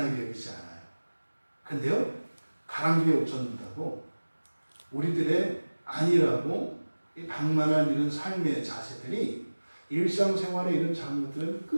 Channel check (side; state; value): both; inverted; correlation -1.00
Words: 여기지 않아요. 근데요, 가랑비에 옷 젖는다고 우리들의 아니라고 이 방만한 이런 삶의 자세들이 일상생활의 이런 작은 것들은